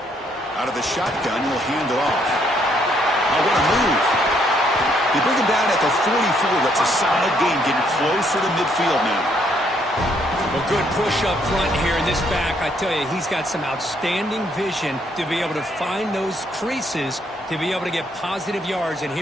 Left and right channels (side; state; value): both; normal; correlation 0.70